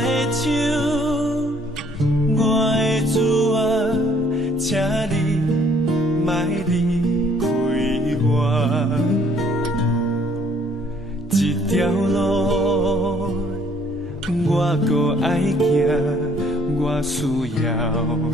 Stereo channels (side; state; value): both; normal; correlation 0.62